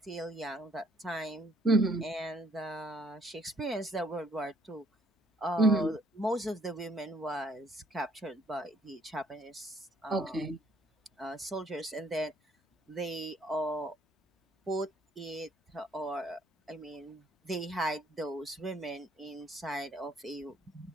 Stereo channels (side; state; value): both; normal; correlation 0.65